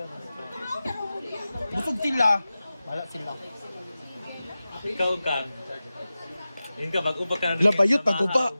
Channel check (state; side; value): inverted; both; correlation -0.95